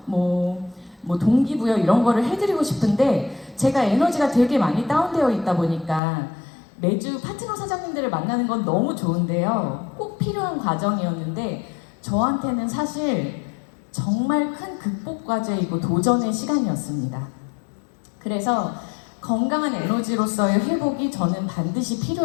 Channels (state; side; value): drops out; right; at 6.0 s